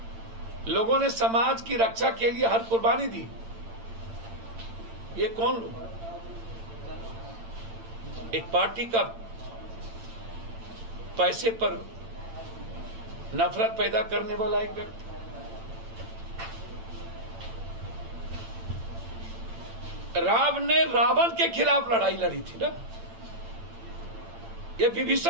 लोगों ने समाज की रक्षा के लिए हर कुर्बानी दी। ये कौन लोग? एक पार्टी का पैसे पर नफरत पैदा करने वाला एक व्यक्ति, राम ने रावण के खिलाफ लड़ाई लड़ी थी ना। ये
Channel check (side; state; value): left; late; 8.9 ms